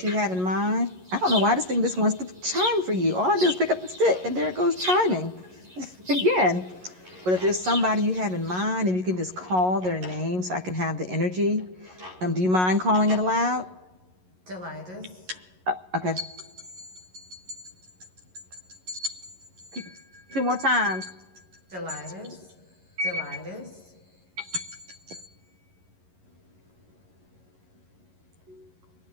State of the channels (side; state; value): left; late; 11 ms